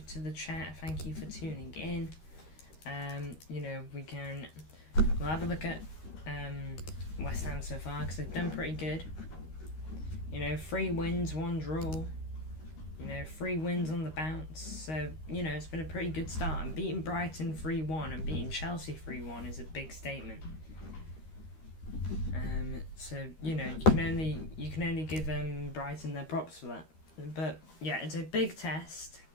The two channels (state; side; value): late; right; 13 ms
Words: to the chat. Thank you for tuning in. We'll have a look at West Ham so far, because they've done pretty good. 3 wins, 1 draw. 3 wins on the bounce. So, it's been a pretty good start. And beating Brighton 3-1 and beating Chelsea 3-1 is a big statement. You can only give Brighton their props for that. But yeah, it's a big test,